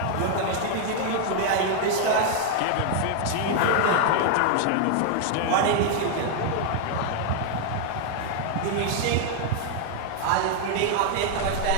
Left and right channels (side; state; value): both; different; correlation 0.00